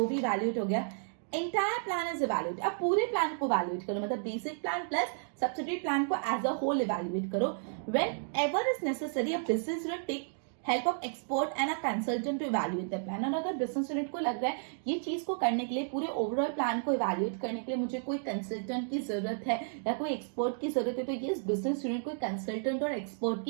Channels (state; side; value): silent; left; digital silence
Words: भी इवैल्यूएट हो गया, एंटायर प्लान इज इवैल्यूएट। अब पूरे प्लान को इवैल्यूएट करो, मतलब basic plan plus subsidiary plan को एज अ होल इवैल्यूएट करो। Whenever is necessary, a business unit take help of expert and a consultant to evaluate the plan। और अगर business unit को लग रहा है ये चीज को करने के लिए, पूरे ओवरऑल प्लान को इवैल्यूएट करने के लिए मुझे कोई कंसल्टेंट की जरूरत है या कोई एक्सपर्ट की जरूरत है, तो ये बिजनेस यूनिट कोई कंसल्टेंट और एक्सपर्ट